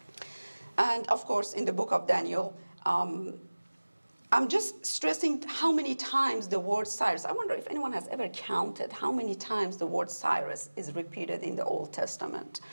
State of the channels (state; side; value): inverted; both; correlation -1.00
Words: And of course, in the book of Daniel, I'm just stressing how many times the word Cyrus, I wonder if anyone has ever counted how many times the word Cyrus is repeated in the Old Testament.